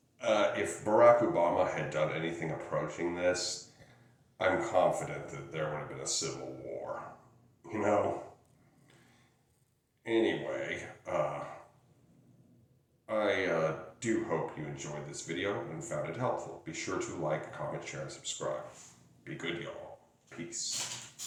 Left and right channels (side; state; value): both; identical; correlation 1.00